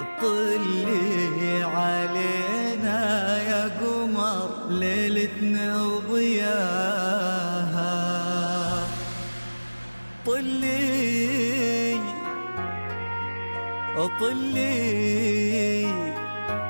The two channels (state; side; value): inverted; both; correlation -1.00